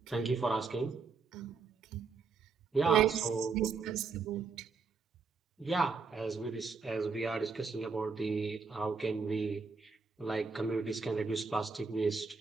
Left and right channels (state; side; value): quieter; left; 4.8 dB